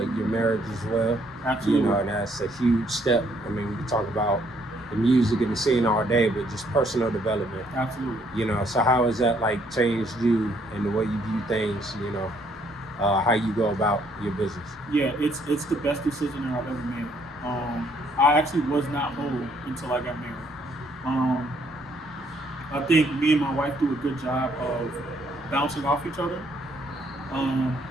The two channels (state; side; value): normal; both; correlation 0.68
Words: your marriage as well. Absolutely. And that's a huge step. I mean, we can talk about the music and the scene all day, but just personal development. Absolutely. So how has that changed you and the way you view things, how you go about your business? Yeah, it's the best decision that I've ever made. I actually was not whole until I got married. I think me and my wife do a good job of bouncing off each other.